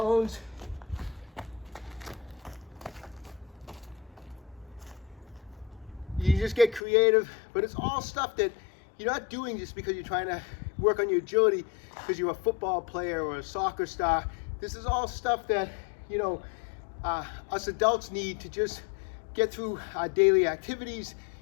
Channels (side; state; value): right; drops out; at 6.8 s